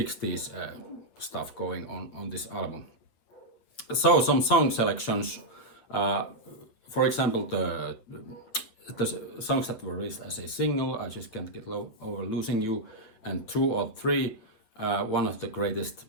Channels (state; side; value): late; right; 8.9 ms